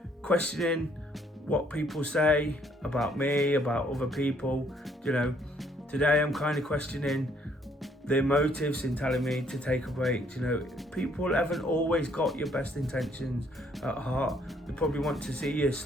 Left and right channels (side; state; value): both; normal; correlation 0.66